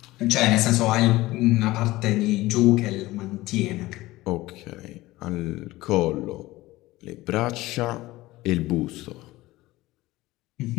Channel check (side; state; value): right; quieter; 18.4 dB